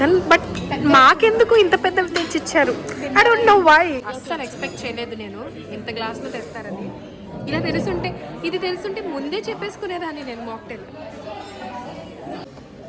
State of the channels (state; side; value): identical; both; correlation 1.00